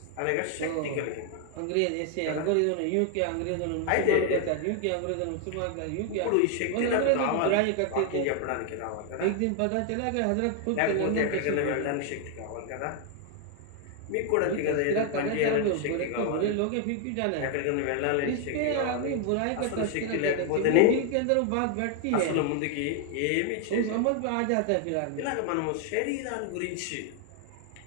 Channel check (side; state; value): both; different; correlation 0.00